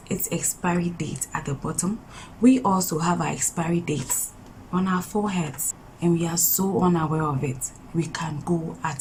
its expiry date at the bottom, we also have our expiry dates on our foreheads, and we are so unaware of it. We can go at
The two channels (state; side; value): identical; both; correlation 1.00